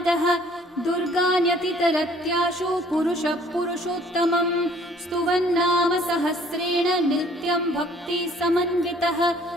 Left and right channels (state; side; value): normal; both; correlation 0.57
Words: दुर्गान्यतितरत्याशु पुरुषः पुरुषोत्तमम् स्तुवन्नाम सहस्रेण नित्यं भक्ति समन्वितः।